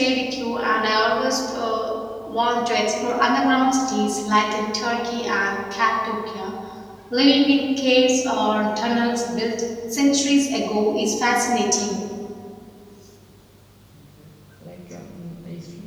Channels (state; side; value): identical; both; correlation 1.00